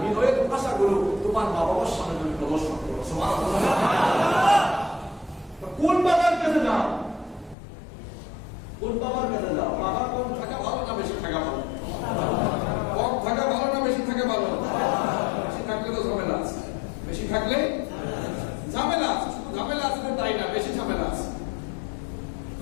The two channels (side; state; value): right; drops out; at 7.6 s